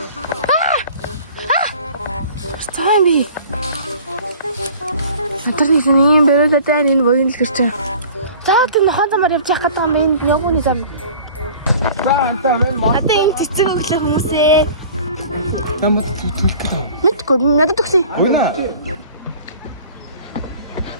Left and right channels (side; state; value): both; inverted; correlation -0.46